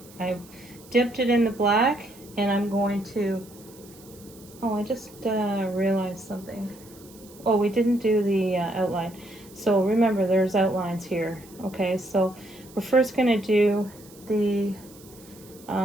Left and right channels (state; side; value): noise; right; hiss, 23 dB below the sound